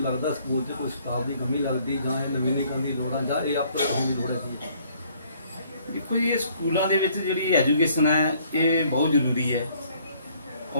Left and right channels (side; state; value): both; inverted; correlation -0.62